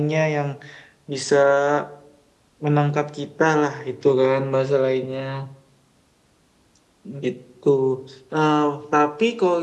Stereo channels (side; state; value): both; identical; correlation 1.00